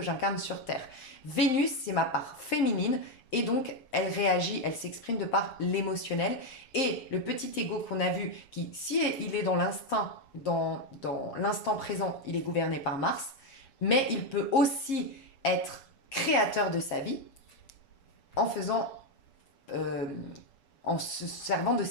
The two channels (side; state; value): right; late; 7.3 ms